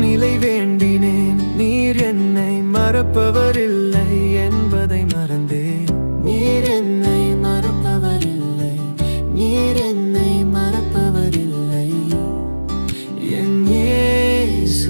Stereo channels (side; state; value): both; inverted; correlation -1.00